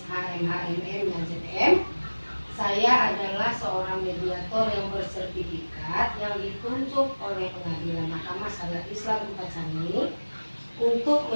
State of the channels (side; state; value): both; inverted; correlation -1.00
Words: MHMM dan ZM. Saya adalah seorang mediator yang bersertifikat yang ditunjuk oleh Pengadilan Mahkamah Syariat Islam Kota Cani untuk